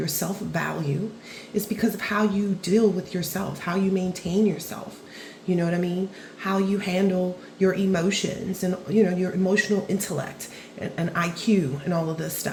self-value, is because of how you deal with yourself, how you maintain yourself. You know what I mean? How you handle your emotions and, your emotional intellect and IQ and all of this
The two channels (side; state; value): both; identical; correlation 1.00